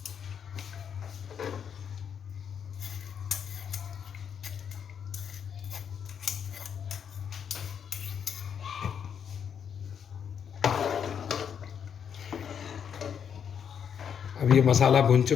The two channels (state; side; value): quieter; right; 7.7 dB